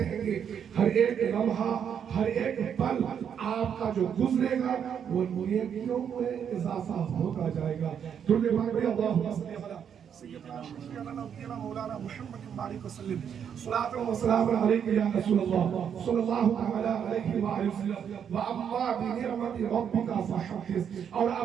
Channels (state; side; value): quieter; left; 8.1 dB